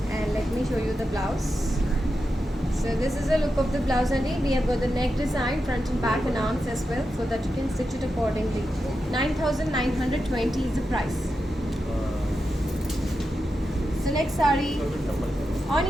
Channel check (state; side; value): normal; both; correlation 0.89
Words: And let me show you the blouse. So this is the look of the blouse and we have got the neck design, front and back and arms as well, so that you can stitch it accordingly. 9,920 is the price. So next saree,